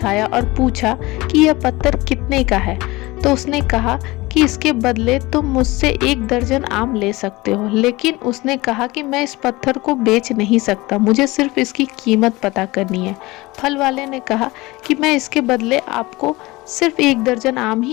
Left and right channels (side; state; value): right; quieter; 21.2 dB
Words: और पूछा कि यह पत्थर कितने का है। तो उसने कहा कि इसके बदले तुम मुझसे 1 दर्जन आम ले सकते हो। लेकिन उसने कहा कि मैं इस पत्थर को बेच नहीं सकता, मुझे सिर्फ इसकी कीमत पता करनी है। फल वाले ने कहा कि मैं इसके बदले आपको सिर्फ 1 दर्जन आम